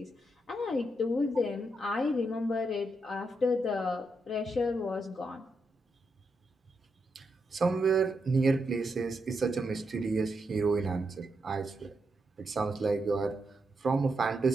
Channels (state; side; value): normal; both; correlation 0.83